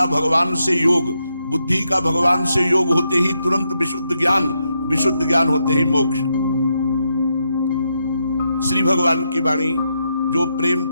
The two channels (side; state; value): both; inverted; correlation -0.82